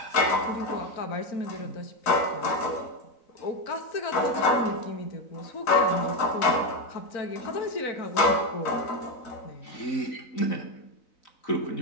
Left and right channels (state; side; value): late; right; 4.0 ms